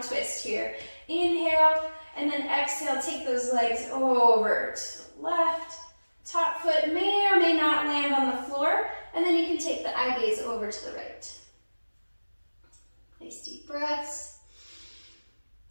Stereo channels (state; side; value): inverted; both; correlation -1.00